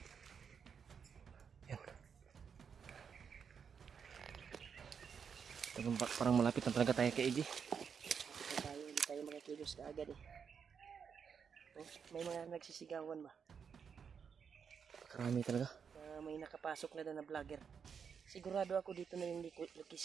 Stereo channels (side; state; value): left; quieter; 6.7 dB